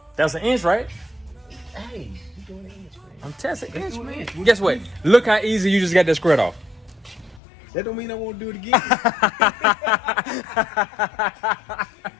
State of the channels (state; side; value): drops out; right; at 7.4 s